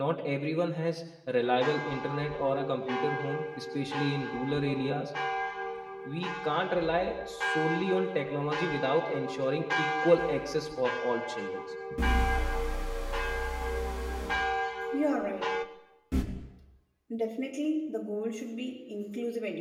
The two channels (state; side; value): identical; both; correlation 1.00